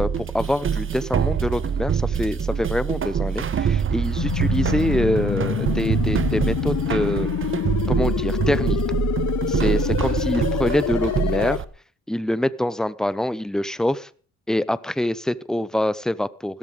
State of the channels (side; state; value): both; normal; correlation 0.68